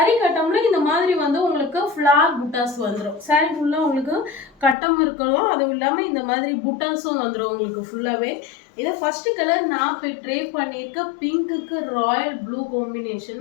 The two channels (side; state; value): right; drops out; at 4.8 s